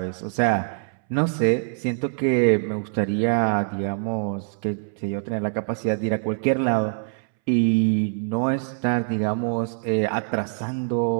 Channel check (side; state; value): left; silent; 63 dB below the other